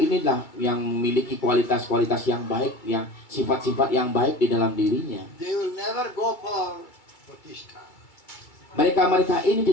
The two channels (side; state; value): right; late; 2.2 ms